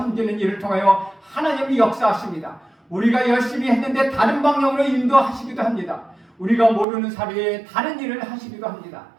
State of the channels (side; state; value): left; drops out; at 6.9 s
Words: 일을 통하여 하나님이 역사하십니다. 우리가 열심히 했는데 다른 방향으로 인도하시기도 합니다. 우리가 모르는 사이에 다른 일을 하시기도 합니다.